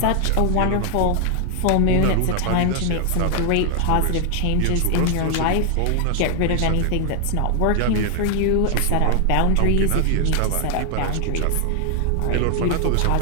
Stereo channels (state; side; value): different; both; correlation 0.00